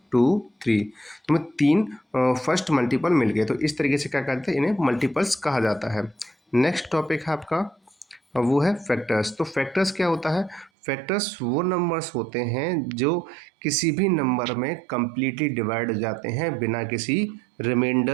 2 3। तो हमें 3 फर्स्ट मल्टीपल मिल गए। तो इस तरीके से क्या कहते हैं? इन्हें मल्टीपल्स कहा जाता है। नेक्स्ट टॉपिक है आपका, वो है फैक्टर्स। तो फैक्टर्स क्या होता है? फैक्टर्स वो नंबर्स होते हैं जो किसी भी नंबर में कम्प्लीटली डिवाइड हो जाते हैं बिना किसी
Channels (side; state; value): left; drops out; at 10.7 s